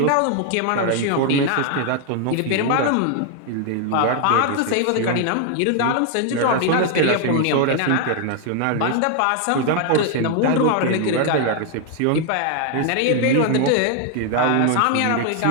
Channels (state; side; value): different; both; correlation 0.00